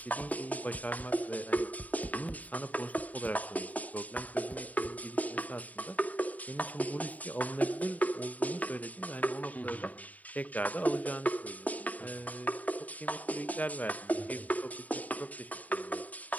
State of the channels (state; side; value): late; right; 0.073 ms